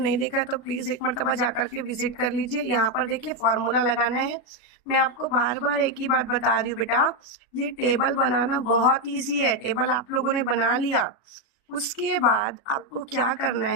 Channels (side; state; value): right; late; 37 ms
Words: देखा है तो प्लीज एक मरतबा जाकर के विजिट कर लीजिए। यहाँ पर देखिए फॉर्मूला लगाना है। मैं आपको बार बार एक ही बात बता रही हूँ बेटा, ये टेबल बनाना बहुत इजी है। टेबल आप लोगों ने बना लिया, उसके बाद आपको क्या करना